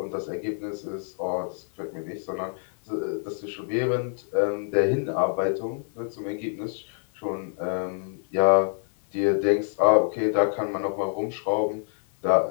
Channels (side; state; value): right; silent; 58 dB below the other